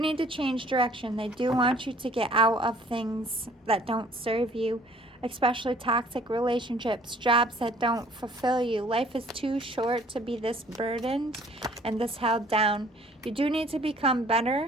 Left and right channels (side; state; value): both; normal; correlation 0.56